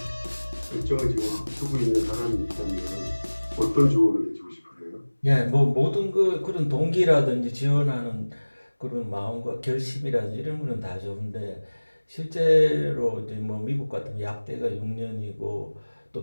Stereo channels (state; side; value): inverted; both; correlation -1.00